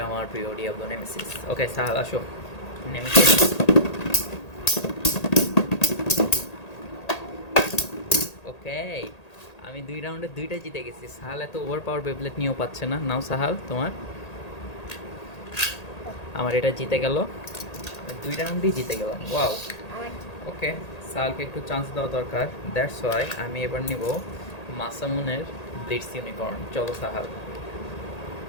আমার প্রিয় ডিয়াবলো নেমেসিস। ওকে সাহাল, আসো। নেমেসিস। ওকে, আমি 2 রাউন্ডে 2টা জিতে গেছি। সাহাল এত ওভার পাওয়ার বেবলেট নিয়েও পাচ্ছে না। নাও সাহাল, তোমার। আমার এটা জিতে গেল, 2 রাউন্ডই জিতে গেলাম। ওয়াও। আমার ওকে, সাহালকে একটু চান্স দেওয়া দরকার। দ্যাটস ওয়াই আমি এবার নিব মাসামুনের ব্লিটস ইউনিকর্ন। চলো সাহাল,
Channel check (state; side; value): late; right; 1.8 ms